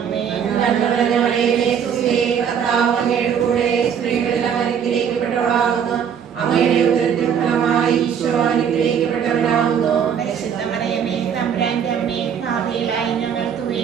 നന്മ നിറഞ്ഞ മറിയമേ, സുസ്ഥി, കർത്താവ് അങ്ങയുടെ കൂടെ സ്ത്രീകളെല്ലാം അനുഗ്രഹിക്കപ്പെട്ടവളാകുന്നു. അങ്ങയുടെ ഉദരത്തിൻ ഫലമായി ഈശോ അനുഗ്രഹിക്കപ്പെട്ടവനാകുന്നു. പരിശുദ്ധ മറിയമേ, തമ്പുരാന്റെ അമ്മേ, പാപികളായ ഞങ്ങൾക്ക്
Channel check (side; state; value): left; quieter; 7.9 dB